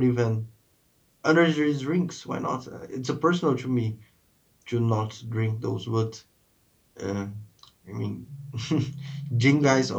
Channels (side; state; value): both; identical; correlation 1.00